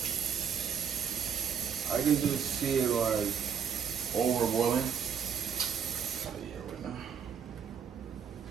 I can just see it like over boiling.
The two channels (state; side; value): quieter; left; 7.4 dB